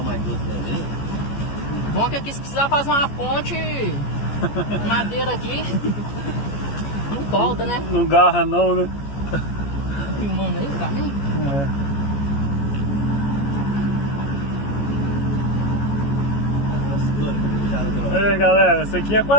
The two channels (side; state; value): right; late; 14 ms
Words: mais doces ali. Bom que aqui se precisar fazer uma ponte, madeira aqui, não volta, né? Não garra não, né? Tá filmando aí o caminho? É. Aí galera, esse aqui é